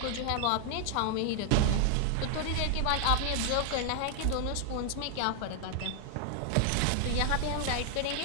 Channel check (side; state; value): both; different; correlation 0.00